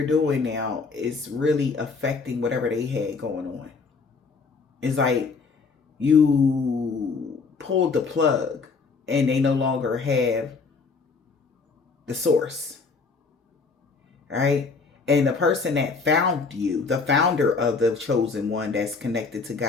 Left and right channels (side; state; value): right; quieter; 4.6 dB